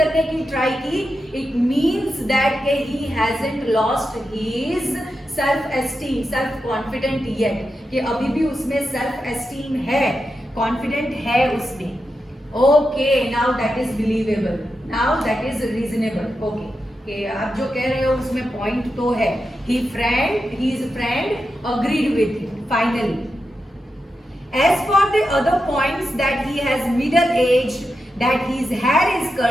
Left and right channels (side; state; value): both; normal; correlation 0.88